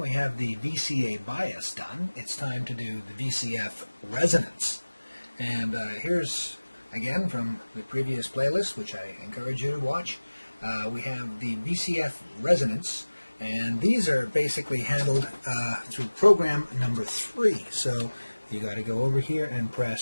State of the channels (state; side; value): inverted; both; correlation -1.00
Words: have the VCA bias done. It's time to do the VCF resonance. And here's, again, from the previous playlist, which I encourage you to watch, we have the VCF resonance. And these are basically handled through program number 3. So you got to go over here and